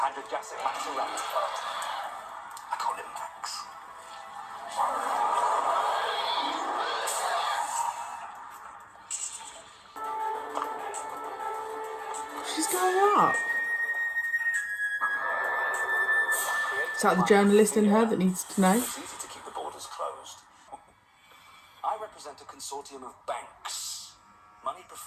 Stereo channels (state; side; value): identical; both; correlation 1.00